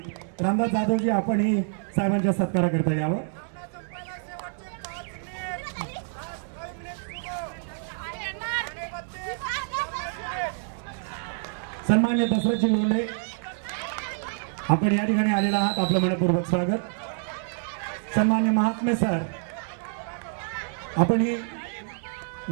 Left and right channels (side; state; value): left; silent; 60 dB below the other